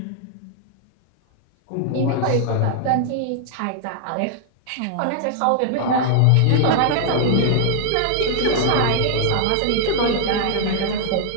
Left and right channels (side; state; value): both; different; correlation 0.00